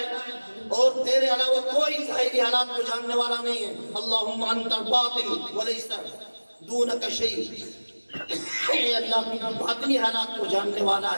اور تیرے علاوہ کوئی ظاہری حالات کو جاننے والا نہیں ہے۔ اللہم انت الباطن ولیس دونک شیء، اے اللہ باطنی حالات کو جاننے والا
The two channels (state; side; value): inverted; both; correlation -1.00